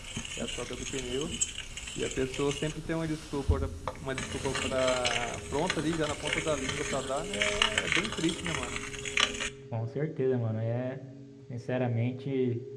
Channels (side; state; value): both; identical; correlation 1.00